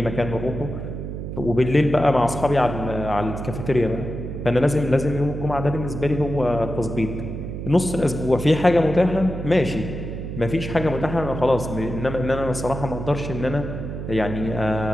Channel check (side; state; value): right; noise; hum, 7 dB below the sound